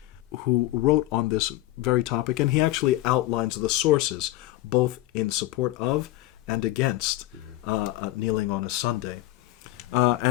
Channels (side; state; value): right; quieter; 16.7 dB